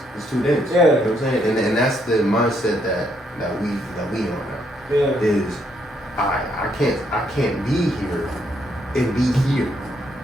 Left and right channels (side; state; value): both; normal; correlation 0.73